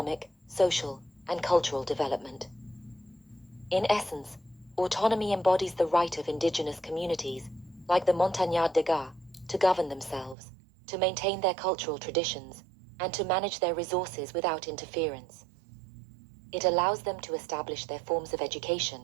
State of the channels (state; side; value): drops out; left; at 10.4 s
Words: social, and cultural development. In essence, autonomy embodies the right of indigenous communities, like the Montagnard Dega, to govern themselves, to maintain their cultural traditions, and to manage their resources without interference. It allows them to establish their forms of education,